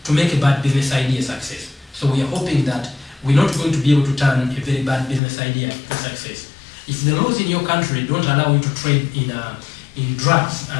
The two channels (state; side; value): drops out; right; at 5.2 s